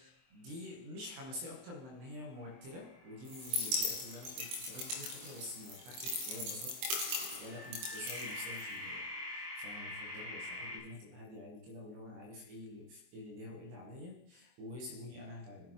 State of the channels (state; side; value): late; left; 23 ms